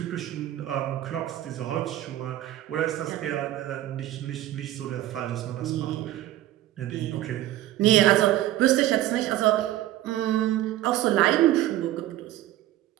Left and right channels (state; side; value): quieter; left; 14.3 dB